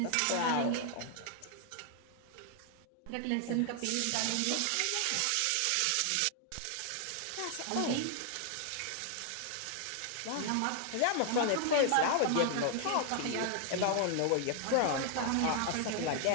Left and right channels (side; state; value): both; different; correlation 0.00